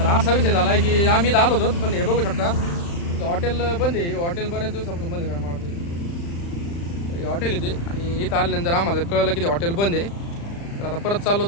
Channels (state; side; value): late; right; 35 ms